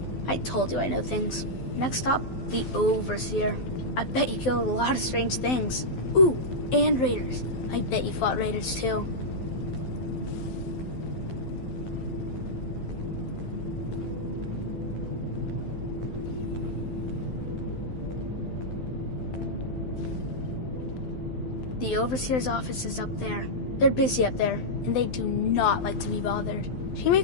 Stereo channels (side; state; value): right; late; 12 ms